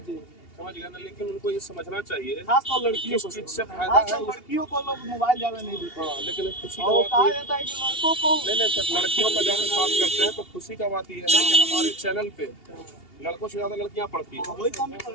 समझ गए ना। लेकिन उनको ये समझना चाहिए खासतौर लड़कियों किस को, चीज से फायदा खासतौर है। लड़कियों को लोग मोबाइल ज्यादा नहीं देते। हाँ, लेकिन खुशी और का कहा बात जाता है कि लड़कों को नहीं सर, लड़कियों का जब हम बात करते हैं तो खुशी का बात यह है कि हमारे चैनल पे लड़कों से ज्यादा लड़कियां पढ़ती हैं। वही काम कर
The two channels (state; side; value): late; right; 2.8 ms